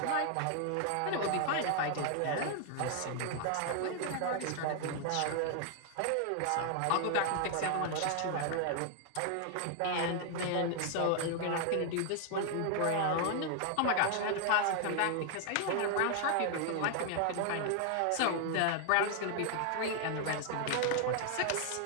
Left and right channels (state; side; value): different; both; correlation 0.00